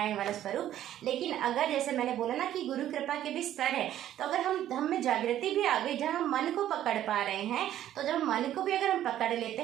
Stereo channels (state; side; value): quieter; left; 12.0 dB